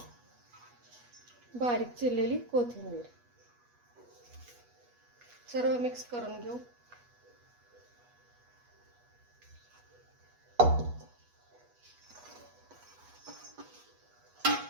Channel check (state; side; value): late; left; 8.2 ms